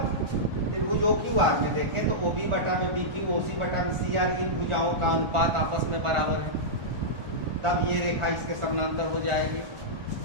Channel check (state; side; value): late; left; 1.4 ms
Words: त्रिभुज OQR में देखें तो OB बटा में BQ OC बटा में CR, इन भुजाओं का अनुपात आपस में बराबर है, तब ये रेखा इसके समानांतर हो जाएगी।